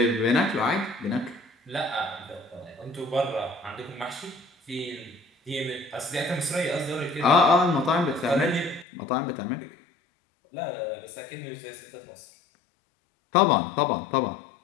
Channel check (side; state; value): right; drops out; at 8.8 s